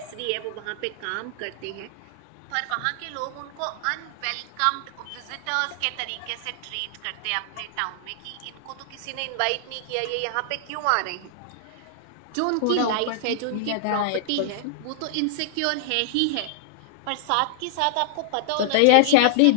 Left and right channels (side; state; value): both; different; correlation -0.01